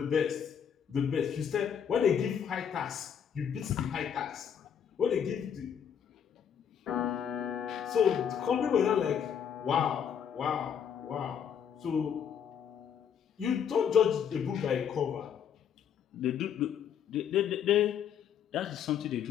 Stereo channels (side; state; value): right; quieter; 8.2 dB